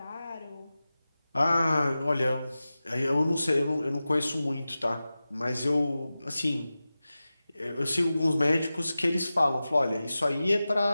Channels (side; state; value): both; inverted; correlation -0.95